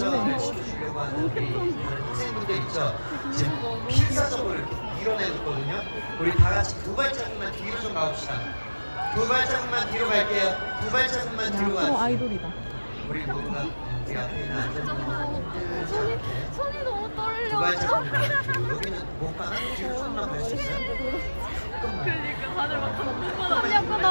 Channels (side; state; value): both; inverted; correlation -1.00